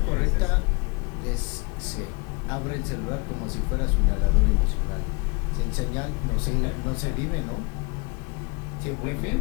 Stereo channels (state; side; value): quieter; right; 30.2 dB